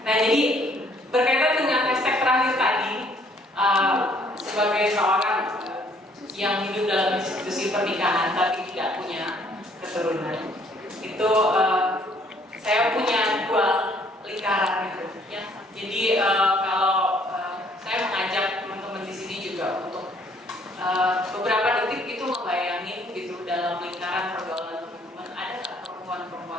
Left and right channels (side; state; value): both; normal; correlation 0.63